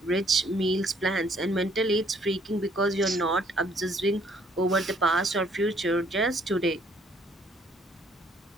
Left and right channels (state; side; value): normal; both; correlation 0.63